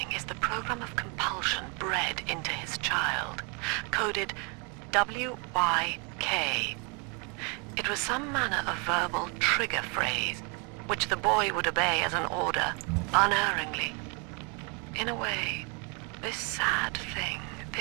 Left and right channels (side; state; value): left; quieter; 32.8 dB